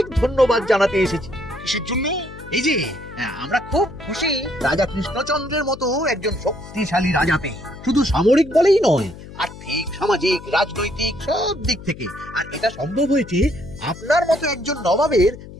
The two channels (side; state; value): left; noise; hum, 15 dB below the sound